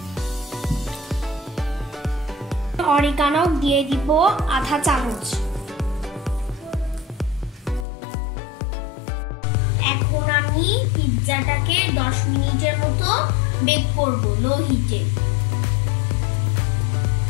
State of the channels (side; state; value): right; drops out; at 7.9 s